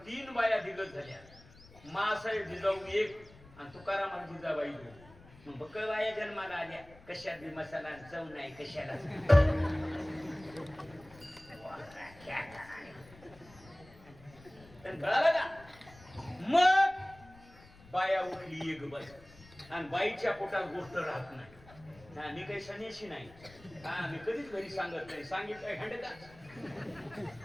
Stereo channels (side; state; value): left; noise; rumble, 22 dB below the sound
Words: 3 बाया दिग्गज झाल्या. मासाहेब जिजाऊ एक आणि तुकाराम जिजाबाई 2. बक्कल बाया जन्माला आल्या, कशात बी मसाला चव नाही कशाला. कळालं का. मग बाया उठली एक बस आणि बाईच्या पोटात गोष्ट राहत नाही. मी काही सन्यासी नाही, मी कधीच घरी सांगत नाही. सांगितलं हंडका